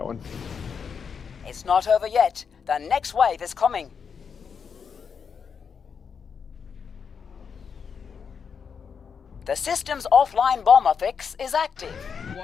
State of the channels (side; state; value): right; quieter; 6.4 dB